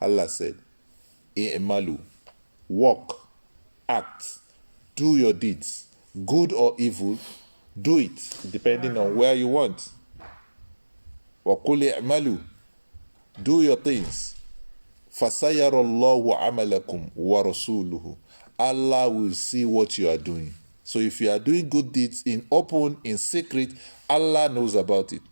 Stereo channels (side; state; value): both; inverted; correlation -1.00